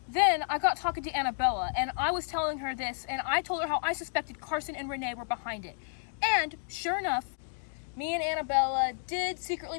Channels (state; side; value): silent; right; digital silence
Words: Then I got talking to Annabella, and I was telling her this, and I told her how I suspected Carson and Renee were behind it. And sure enough, me and Annabella did